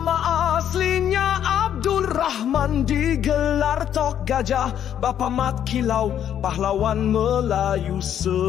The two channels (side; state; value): right; quieter; 9.9 dB